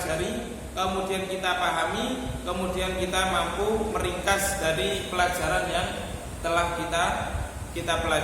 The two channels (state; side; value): identical; both; correlation 1.00